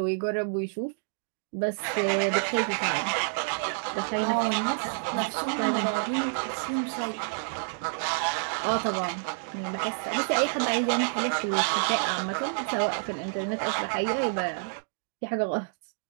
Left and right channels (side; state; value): left; silent; digital silence